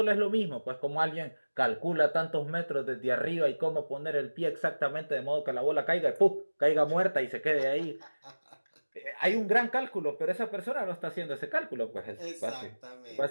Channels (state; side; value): inverted; both; correlation -1.00